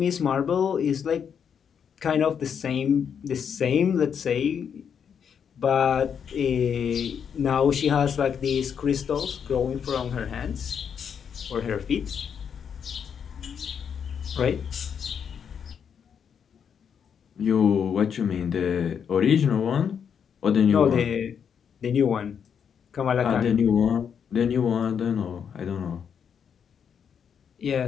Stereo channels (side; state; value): right; quieter; 7.5 dB